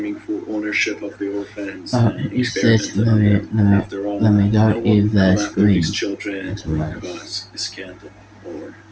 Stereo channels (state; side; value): identical; both; correlation 1.00